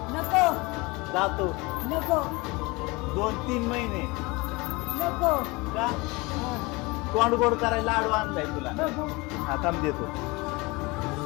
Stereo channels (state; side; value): quieter; right; 24.6 dB